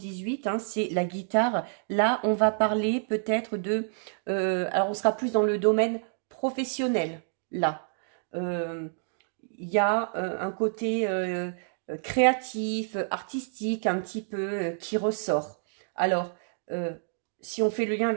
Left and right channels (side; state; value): left; silent; digital silence